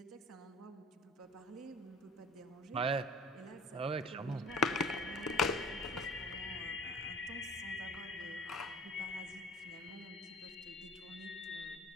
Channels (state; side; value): normal; both; correlation 0.45